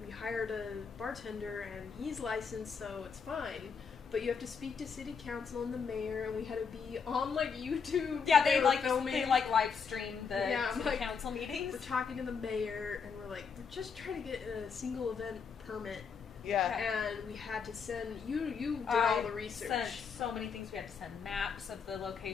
hired a bartender and he's licensed, so it's fine. But you have to speak to city council and the mayor, and we had to be on like YouTube. Yeah, they filming. they live stream the city council meetings. We're talking to the mayor, and we're like, we're just trying to get a single event permit. Yeah. And we had to send, you did all the research. Sent so many things. We had to send maps of the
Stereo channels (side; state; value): right; quieter; 5.9 dB